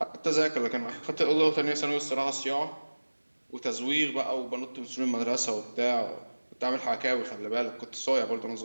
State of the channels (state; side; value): inverted; both; correlation -1.00